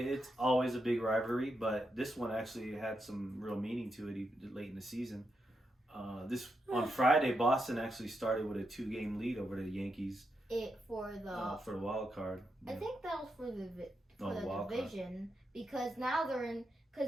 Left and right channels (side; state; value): both; normal; correlation 0.84